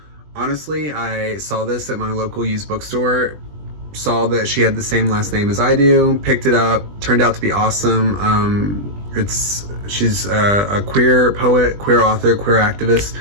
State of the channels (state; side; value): late; left; 20 ms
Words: Honestly, I saw this at my local used bookstore. Saw that she had the same last name as I do, picked it up, turned out to be awesome. She's a queer poet, queer author, queer activist,